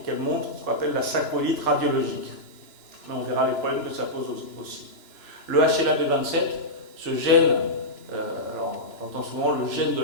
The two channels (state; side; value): late; right; 2.9 ms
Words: qu'elle montre ce qu'on appelle la sacroïlite radiologique. Mais on verra les problèmes que ça pose aussi. Le HLA-B27, ce gène, alors on entend souvent le gène de